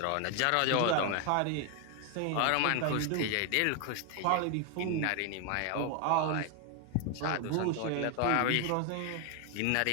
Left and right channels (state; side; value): different; both; correlation 0.01